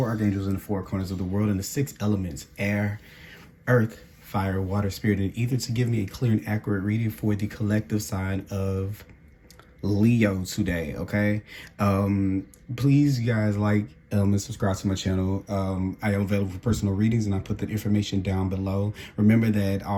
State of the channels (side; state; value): both; identical; correlation 1.00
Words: archangels in the four corners of the world and the six elements: air, earth, fire, water, spirit, and ether, to give me a clear and accurate reading for the collective sign of Leo today. Okay, please, you guys, and subscribe to my channel. I am available for personal readings, and I put the information down below. Remember that